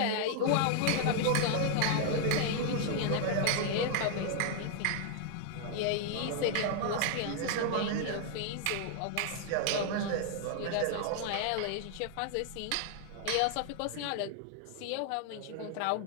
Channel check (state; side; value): different; both; correlation 0.00